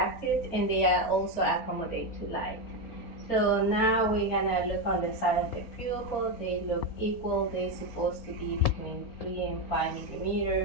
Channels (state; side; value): late; right; 4.6 ms